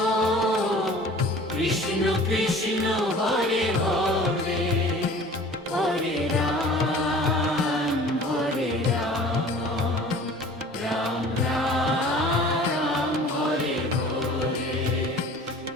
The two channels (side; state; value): both; normal; correlation 0.45